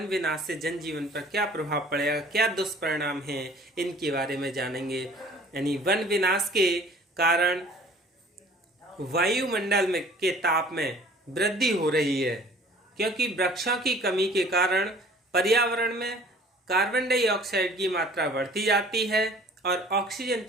विनाश से जनजीवन पर क्या प्रभाव पड़ेगा, क्या दुष्परिणाम हैं, इनके बारे में जानेंगे। यानी वन विनाश के कारण वायुमंडल में के ताप में वृद्धि हो रही है, क्योंकि वृक्षों की कमी के कारण पर्यावरण में कार्बन डाइऑक्साइड की मात्रा बढ़ती जाती है और ऑक्सीजन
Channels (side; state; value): both; normal; correlation 0.50